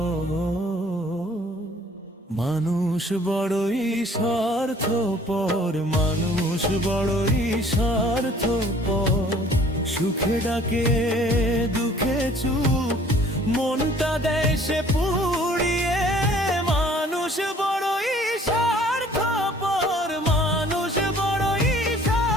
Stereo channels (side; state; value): both; normal; correlation 0.55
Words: মানুষ বড়ই স্বার্থপর, মানুষ বড়ই স্বার্থপর। সুখে ডাকে দুঃখে চুপ, মনটা দেয় সে পুড়িয়ে। মানুষ বড়ই স্বার্থপর, মানুষ বড়ই